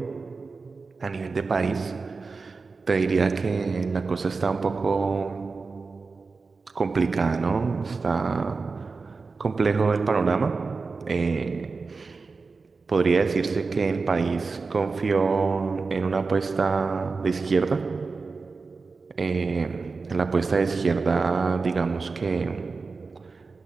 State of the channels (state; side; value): quieter; left; 4.3 dB